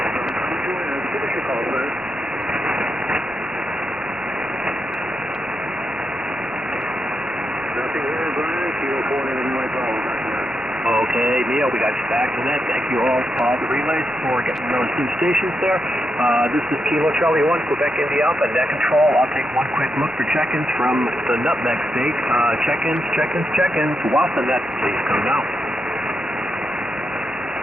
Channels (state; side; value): normal; both; correlation 0.84